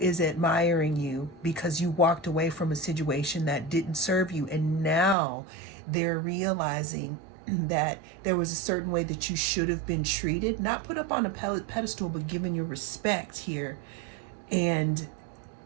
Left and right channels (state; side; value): drops out; left; at 5.2 s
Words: admiring you because you walked away from a situation that didn't serve you, and now they're realizing that there was a certain way that you should have been treated, not put up on a pedestal, but given your respect here. And